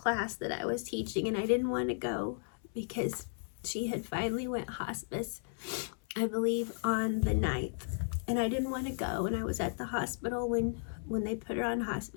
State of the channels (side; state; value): right; silent; 55 dB below the other